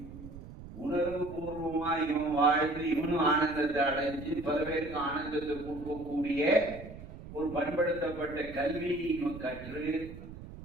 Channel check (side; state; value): right; noise; rumble, 14 dB below the sound